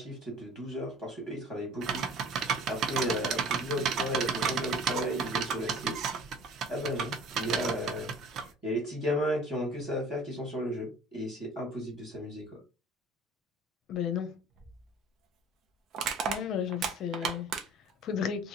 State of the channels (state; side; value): normal; both; correlation 0.47